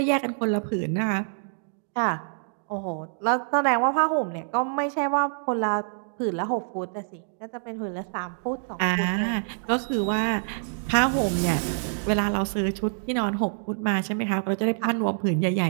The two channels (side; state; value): left; silent; digital silence